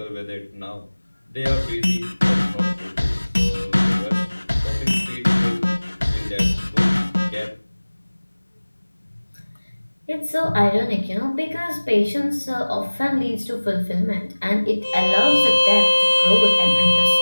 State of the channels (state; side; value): inverted; both; correlation -1.00